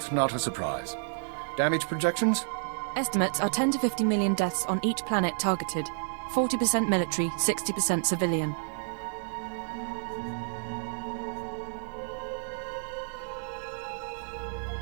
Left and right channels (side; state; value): left; silent; digital silence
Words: not a surprise. Damage projections? Estimates are 10 to 50 million deaths on each planet targeted. 40% military, 60% civilian.